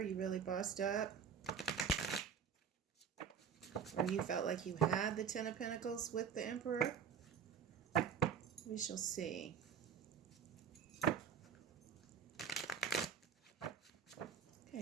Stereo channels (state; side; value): quieter; left; 7.3 dB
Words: You really bossed up. Or you felt like you had the Ten of Pentacles with the Emperor. We shall see. Okay,